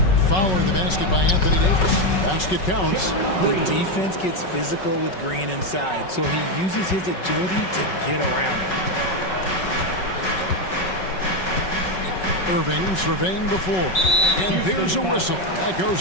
Following the basket by Anthony Davis. Basket counts. The defense gets physical with Green inside, so he uses his agility to get around it. Irving surveying the floor. And there's a whistle. That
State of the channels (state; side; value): late; right; 5.4 ms